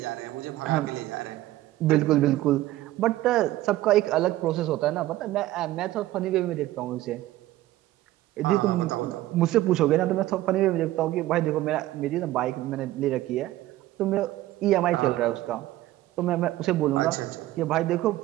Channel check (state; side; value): quieter; left; 15.8 dB